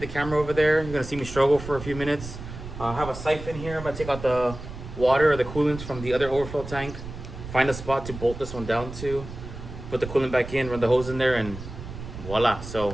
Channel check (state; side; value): noise; right; rumble, 11 dB below the sound